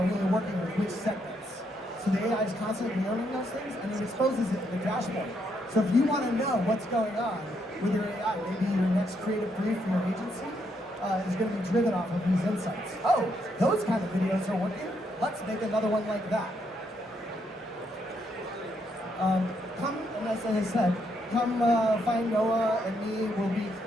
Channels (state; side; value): normal; both; correlation 0.76